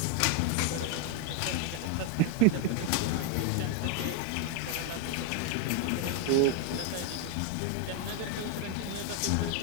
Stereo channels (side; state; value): both; different; correlation 0.00